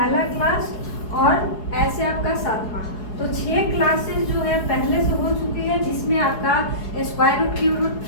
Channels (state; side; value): late; right; 4.8 ms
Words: क्लास और ऐसे आपका 7वां। तो 6 क्लासेस जो है पहले से हो चुकी है, जिसमें आपका square root, cube root,